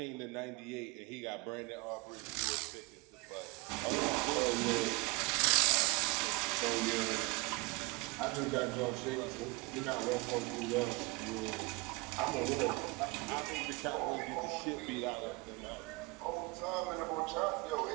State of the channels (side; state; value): left; quieter; 25.9 dB